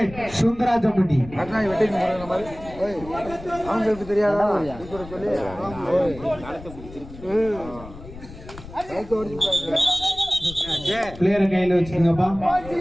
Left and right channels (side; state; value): left; noise; rumble, 15 dB below the sound